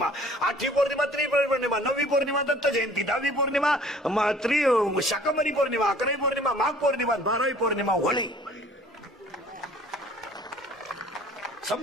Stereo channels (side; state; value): both; normal; correlation 0.52